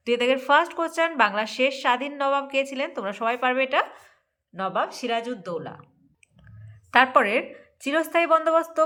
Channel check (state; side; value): identical; both; correlation 1.00